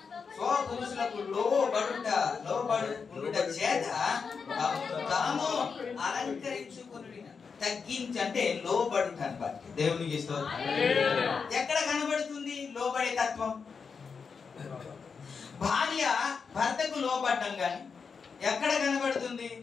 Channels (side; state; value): right; quieter; 5.6 dB